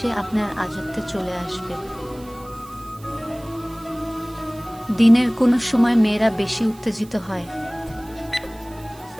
আপনার আজত্বে চলে আসবে। দিনের কোনো সময় মেয়েরা বেশি উত্তেজিত হয়।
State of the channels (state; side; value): noise; right; hiss, 23 dB below the sound